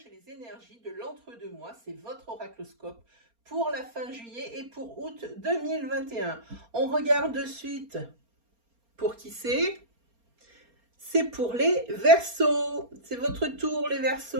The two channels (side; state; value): left; late; 4.3 ms